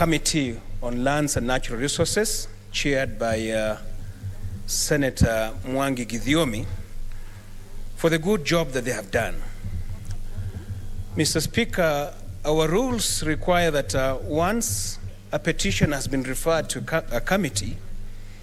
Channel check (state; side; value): identical; both; correlation 1.00